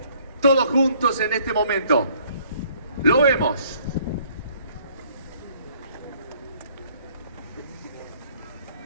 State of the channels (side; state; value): both; inverted; correlation -0.61